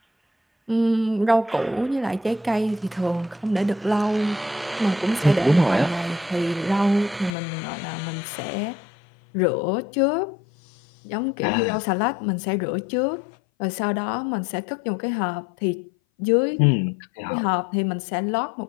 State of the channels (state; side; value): drops out; right; at 7.3 s